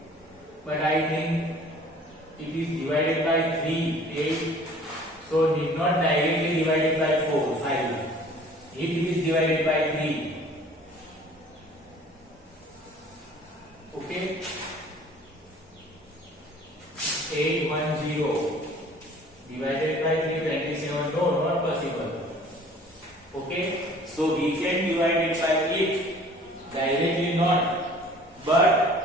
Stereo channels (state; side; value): normal; both; correlation 0.51